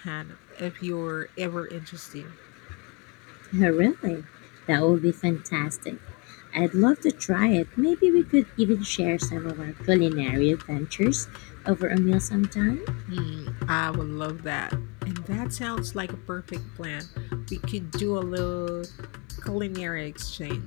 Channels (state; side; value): quieter; right; 30.7 dB